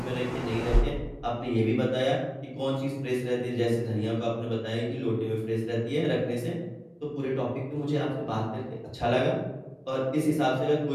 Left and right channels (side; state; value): both; identical; correlation 1.00